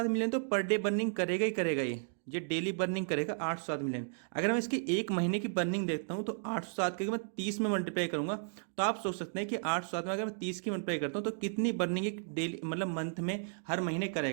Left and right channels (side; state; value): left; silent; digital silence